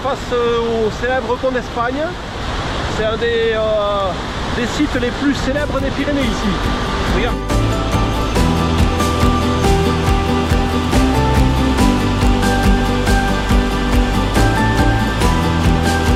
au célèbre pont d'Espagne. C'est un des sites les plus célèbres des Pyrénées ici. Regarde.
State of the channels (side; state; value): both; identical; correlation 1.00